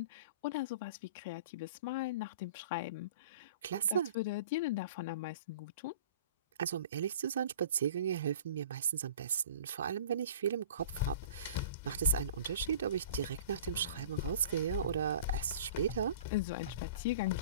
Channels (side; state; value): both; inverted; correlation -0.43